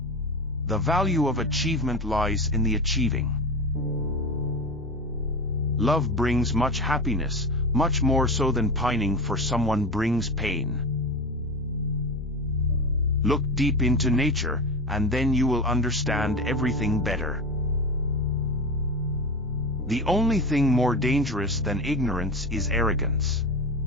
The value of achievement lies in the achieving. Love brings much happiness, much more so than pining for someone brings pain. Look deep into nature, and then you will understand everything better. The only thing more dangerous than ignorance is arrogance.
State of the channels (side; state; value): both; normal; correlation 0.25